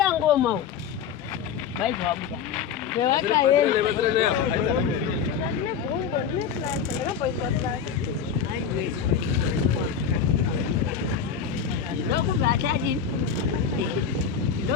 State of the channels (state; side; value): quieter; right; 7.1 dB